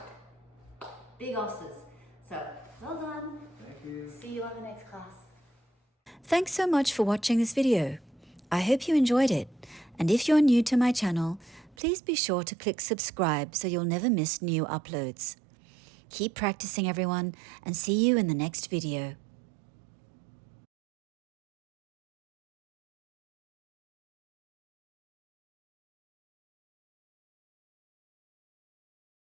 big osses. So well done. Thank you. See you on the next class. Thanks so much for watching this video. I hope you enjoyed it. And if you're new to my channel, please be sure to click subscribe so you'll never miss new uploads. Keep practicing, everyone, and see you in the next video.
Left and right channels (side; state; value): left; drops out; at 11.8 s